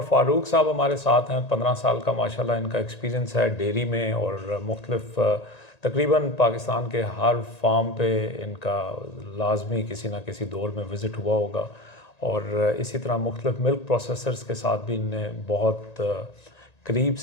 फ़ारूक साहब हमारे साथ हैं। 15 साल का माशाल्लाह इनका एक्सपीरियंस है डेयरी में और मुख्तलिफ़ तकरीबन पाकिस्तान के हर फार्म पे इनका लाजमी किसी न किसी दौर में विज़िट हुआ होगा। और इसी तरह मुख्तलिफ़ मिल्क प्रोसेसर्स के साथ भी इनने बहुत करीब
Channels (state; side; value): late; right; 1.9 ms